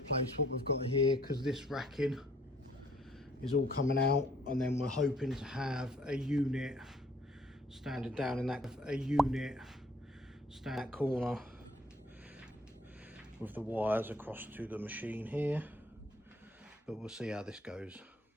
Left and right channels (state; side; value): normal; both; correlation 0.61